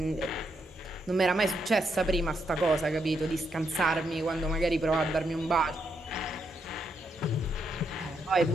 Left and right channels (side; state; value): both; normal; correlation 0.80